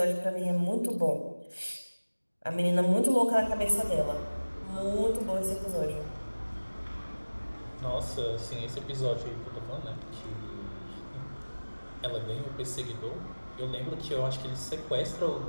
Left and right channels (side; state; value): both; inverted; correlation -1.00